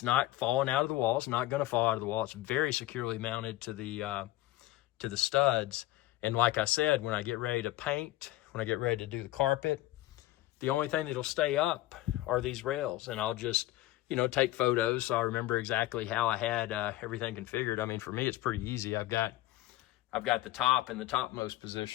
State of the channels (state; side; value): quieter; right; 16.2 dB